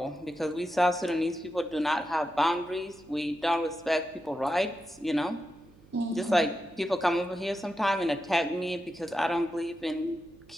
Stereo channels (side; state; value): right; noise; hum, 25 dB below the sound